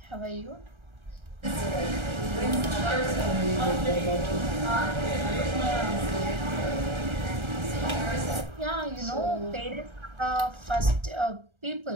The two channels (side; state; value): left; late; 1.3 ms